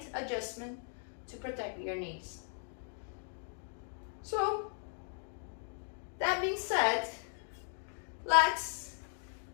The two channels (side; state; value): right; silent; 53 dB below the other